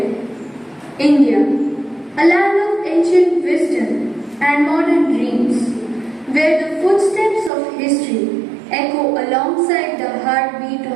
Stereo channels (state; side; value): drops out; left; at 7.5 s